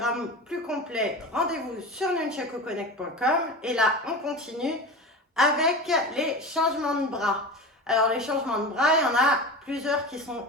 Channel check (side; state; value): both; normal; correlation 0.29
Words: plus complet, rendez-vous sur nunchakuconnect.com et là, on continue avec les changements de bras. Alors, les changements de bras, il y en a plusieurs qui sont